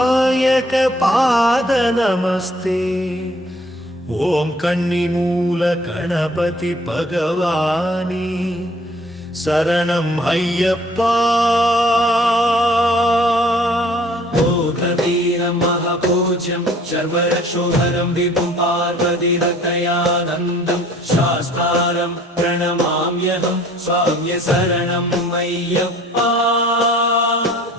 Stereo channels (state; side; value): normal; both; correlation 0.55